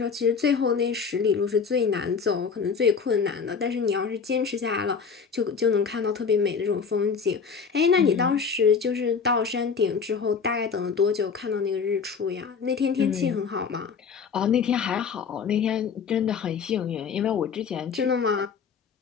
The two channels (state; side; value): quieter; right; 5.8 dB